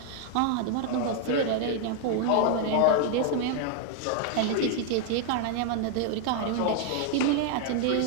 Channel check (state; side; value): different; both; correlation 0.00